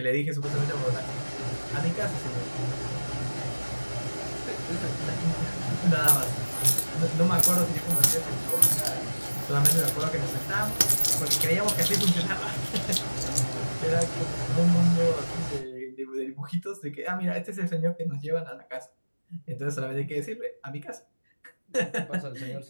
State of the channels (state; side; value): inverted; both; correlation -1.00